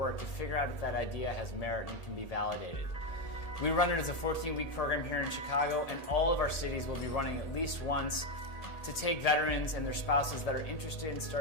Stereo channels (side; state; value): right; late; 1.7 ms